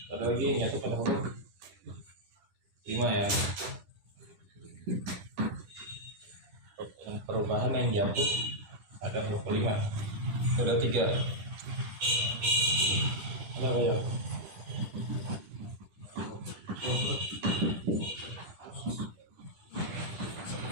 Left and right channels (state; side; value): late; left; 10 ms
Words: Ada lagi yang jatuh pada huruf 5 ya. Perubahan yang jatuh pada huruf kelima. Ada 3. Ada apa ya?